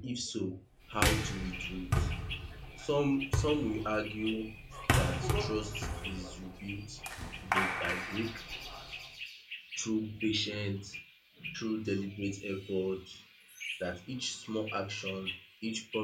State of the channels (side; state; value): both; identical; correlation 1.00